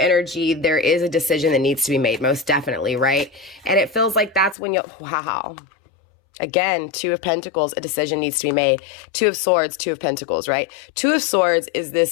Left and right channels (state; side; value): drops out; right; at 4.5 s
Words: there is a decision that needs to be made, most definitely, right? And it feels like that's when wow. Again, Two of Pentacles, a decision needs to be made. Two of Swords, Two of Pentacles, right? Two of Swords is